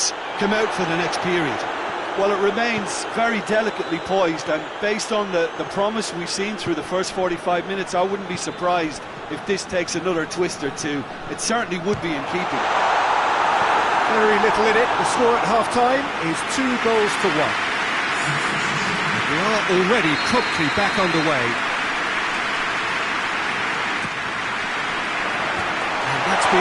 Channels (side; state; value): both; identical; correlation 1.00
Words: come out for the next period. Well, it remains very delicately poised, and based on the promise we've seen through the first 45 minutes, I wouldn't be surprised if this takes another twist or two. It certainly would be in keeping. Very little in it. The score at half-time is 2 goals to 1. We are already promptly back underway. And that's